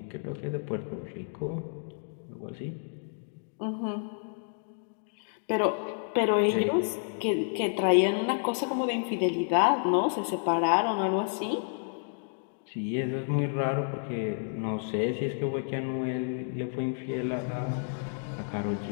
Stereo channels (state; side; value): silent; right; digital silence